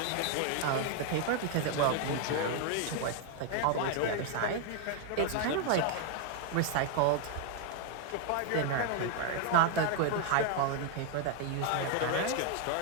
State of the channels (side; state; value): both; different; correlation 0.00